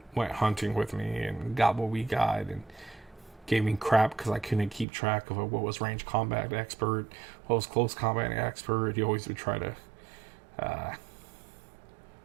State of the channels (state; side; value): drops out; left; at 4.9 s